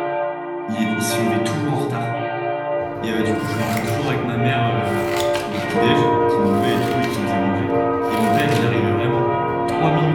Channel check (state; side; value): identical; both; correlation 1.00